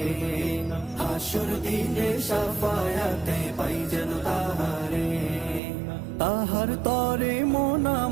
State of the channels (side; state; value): left; drops out; at 5.6 s